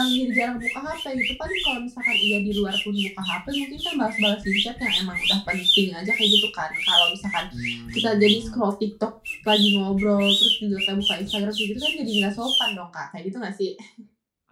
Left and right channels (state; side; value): identical; both; correlation 1.00